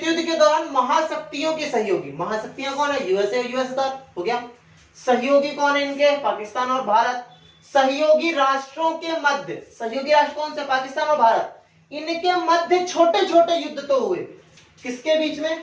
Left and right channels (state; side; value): identical; both; correlation 1.00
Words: युद्ध के दौरान महाशक्तियों के सहयोगी, महाशक्तियां कौन है, यूएसए और यूएसएसआर हो गया। सहयोगी कौन है इनके, पाकिस्तान और भारत। सहयोगी राष्ट्रों के मध्य, सहयोगी राष्ट्र कौन से, पाकिस्तान और भारत, इनके मध्य छोटे छोटे युद्ध तो हुए। किसके बीच